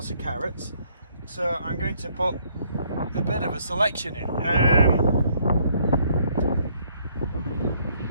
of carrots, so I'm going to put a bit of a selection in.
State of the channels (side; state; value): both; inverted; correlation -0.66